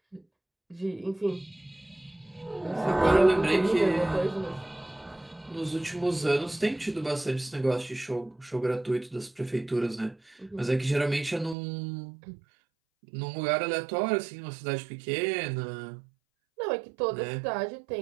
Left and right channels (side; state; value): left; drops out; at 11.6 s